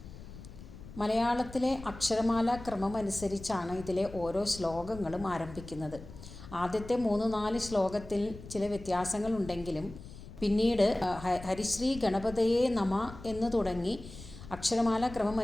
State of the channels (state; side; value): noise; left; rumble, 15 dB below the sound